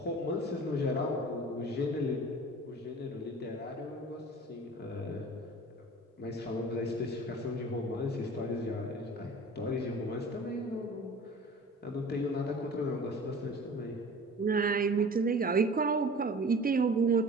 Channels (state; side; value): normal; both; correlation 0.42